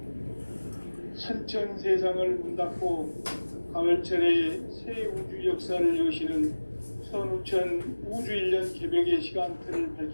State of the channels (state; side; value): inverted; both; correlation -1.00